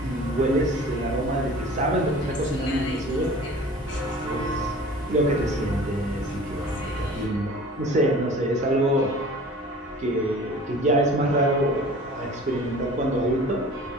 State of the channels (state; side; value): normal; both; correlation 0.43